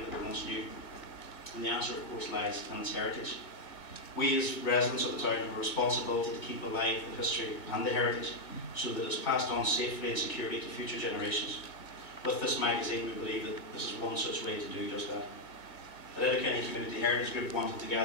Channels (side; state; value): right; late; 1.9 ms